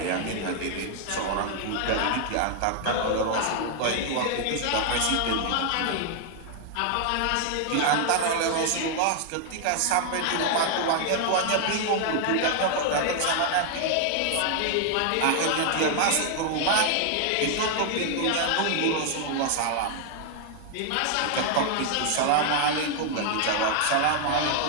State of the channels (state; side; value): different; both; correlation 0.00